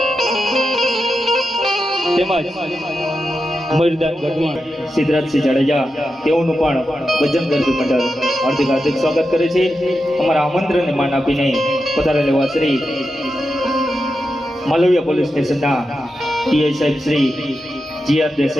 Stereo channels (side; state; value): both; normal; correlation 0.89